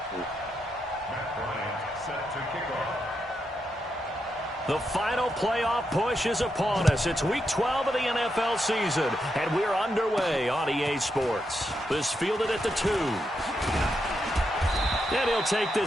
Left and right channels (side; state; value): both; normal; correlation 0.83